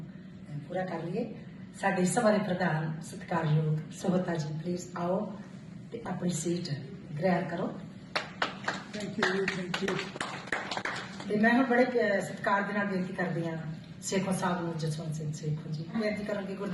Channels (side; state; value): both; identical; correlation 1.00